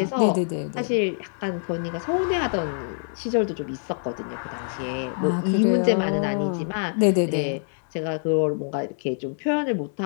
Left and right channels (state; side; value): silent; right; 62 dB below the other